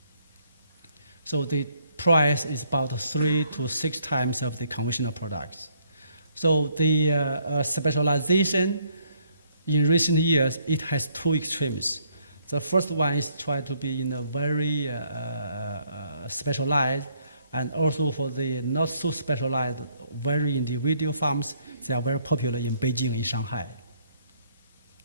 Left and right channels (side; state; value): both; inverted; correlation -0.68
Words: So the price is about 3 to 6 times of the conventional products. So the specialization in recent years, it has 2 extremes. The first one is try to be in a very specialized, and also for the not so specialized, very individual farms, they are very popular in Beijing, in Shanghai.